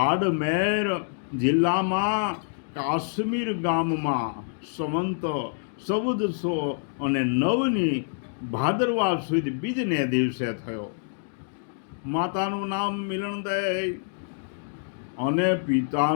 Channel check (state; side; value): silent; right; digital silence